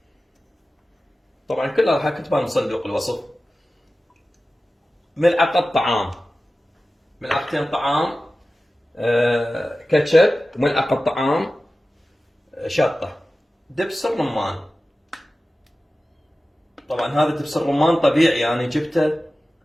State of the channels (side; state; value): both; normal; correlation 0.95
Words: طبعا كلها راح اكتبها من صندوق الوصف. ملعقة طعام، ملعقتين طعام كاتشب، وملعقة طعام شطة، دبس الرمان. طبعا هذا دبس الرمان طبيعي، يعني جبته